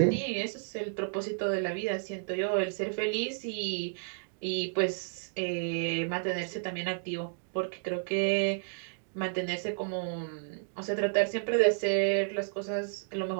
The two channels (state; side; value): silent; left; digital silence